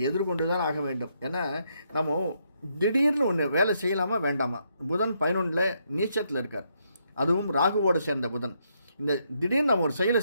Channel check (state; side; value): inverted; both; correlation -0.76